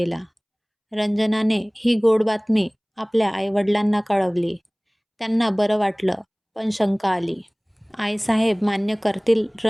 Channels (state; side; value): identical; both; correlation 1.00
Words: रंजनाने ही गोड बातमी आपल्या आईवडिलांना कळवली. त्यांना बरं वाटलं, पण शंका आली. आईसाहेब मान्य करतील